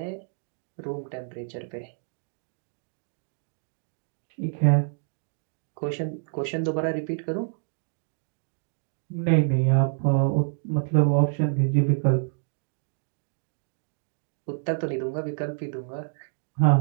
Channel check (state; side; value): silent; left; digital silence